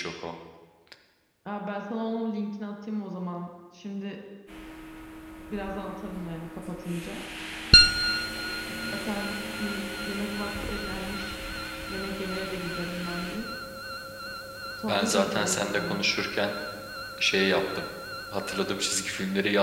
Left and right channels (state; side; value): identical; both; correlation 1.00